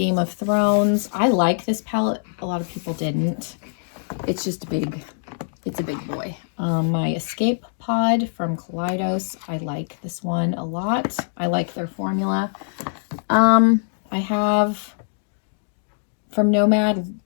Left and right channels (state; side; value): silent; right; digital silence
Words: of Thrones. I like this palette. A lot of people didn't. It's just it's a big boy. My Escape Pod from Kaleidos. I like this one a lot. I like their formula. I have from Nomad